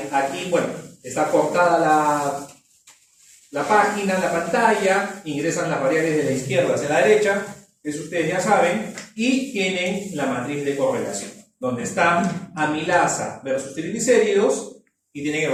bueno, está cortada la página, la pantalla, ingresan las variables de la izquierda hacia la derecha, eso ustedes ya saben, y tienen la matriz de correlación, donde está amilasa versus triglicéridos y tienen el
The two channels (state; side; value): identical; both; correlation 1.00